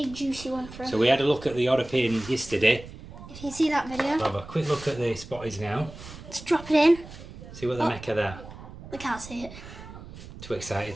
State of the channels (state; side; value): noise; right; rumble, 15 dB below the sound